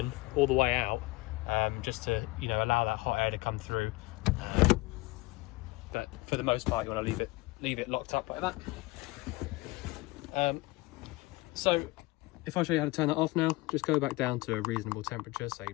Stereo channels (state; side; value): quieter; right; 21.8 dB